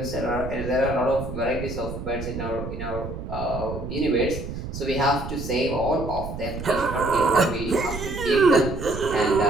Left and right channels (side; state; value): right; noise; rumble, 8 dB below the sound